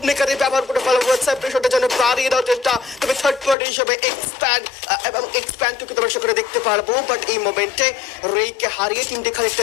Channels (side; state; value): right; drops out; at 3.6 s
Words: মেকারে ব্যবহার করে ফেলা হয়েছে প্রেশারটা যেন বাড়িয়ে দেওয়ার চেষ্টা। তবে থার্ড পার্টি হিসেবে এক্সপ্যান্ডকে দর্শক করে দেখতে পারবো, বাট এই মোমেন্টে রেইকে হারিয়ে টিমটি